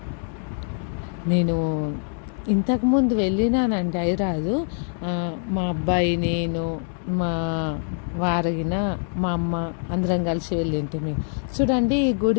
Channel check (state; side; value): silent; right; 62 dB below the other